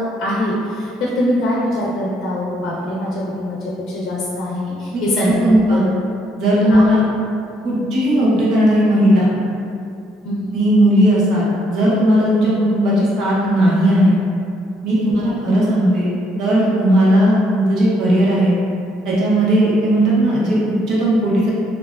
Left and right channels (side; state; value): both; normal; correlation 0.73